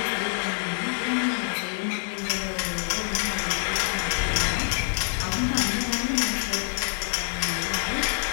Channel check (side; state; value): right; silent; 61 dB below the other